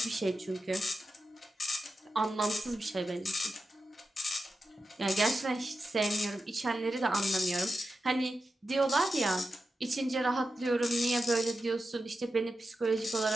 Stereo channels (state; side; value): normal; both; correlation 0.91